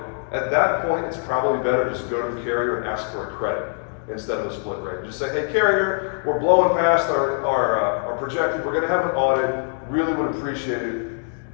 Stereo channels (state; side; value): silent; right; 59 dB below the other